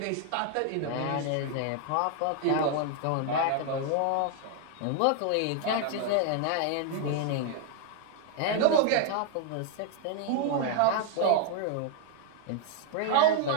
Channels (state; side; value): different; both; correlation 0.00